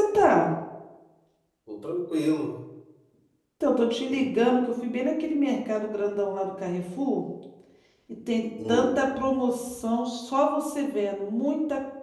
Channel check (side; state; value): both; identical; correlation 1.00